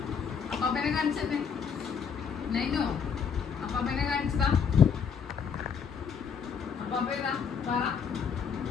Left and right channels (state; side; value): quieter; right; 6.6 dB